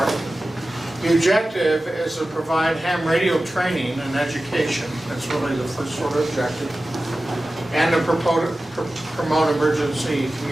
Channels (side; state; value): both; normal; correlation 0.95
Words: The objective is to provide ham radio training and education. That's really the first sort of objective. And to promote emergency